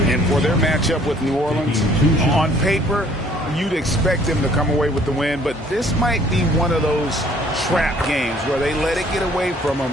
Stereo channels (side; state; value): both; normal; correlation 0.58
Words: And for their matchup with New Orleans, on paper, you'd expect them to come away with the win, but this might be one of those trap games where they let it get away from them